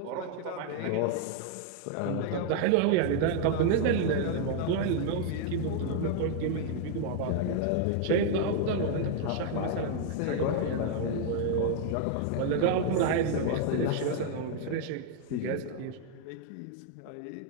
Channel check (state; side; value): different; both; correlation 0.00